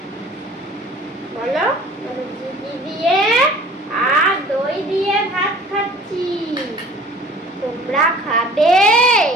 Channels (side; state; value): both; normal; correlation 0.48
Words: বলো, ঘি দিয়ে আর দই দিয়ে ভাত খাচ্ছি, তোমরা খাবে